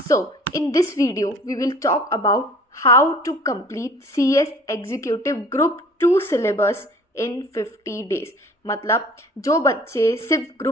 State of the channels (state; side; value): normal; both; correlation 0.48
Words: In this video we will talk about how to complete CS executive group 2 syllabus in 50 days. मतलब जो बच्चे सिर्फ